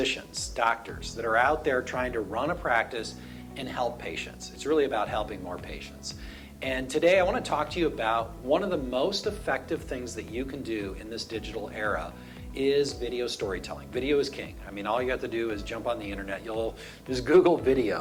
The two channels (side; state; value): both; identical; correlation 1.00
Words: doctors that are out there trying to run a practice and help patients. It's really about helping more patients. And today I want to talk to you about one of the most effective things that you can do in this digital era is video storytelling. Video is king. I mean, all you have to do is jump on the internet. You'll just Google